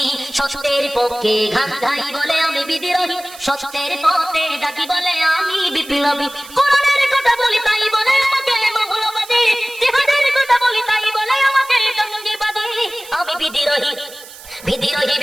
সত্যের পক্ষে গান গাই বলে আমি বিদ্রোহী, সত্যের পথে ডাকি বলে আমি বিপ্লবী। কোরআনের কথা বলি তাই বলে আমাকে মৌলবাদী, জিহাদের কথা বলি তাই বলে আমাকে জঙ্গিবাদী। আমি বিদ্রোহী, বিদ্রোহী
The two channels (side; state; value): right; noise; hiss, 18 dB below the sound